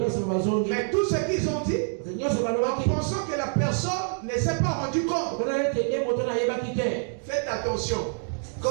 Mais tout ce qu'ils ont dit, en pensant que la personne ne s'est pas rendu compte. Faites attention.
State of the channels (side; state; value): left; silent; 57 dB below the other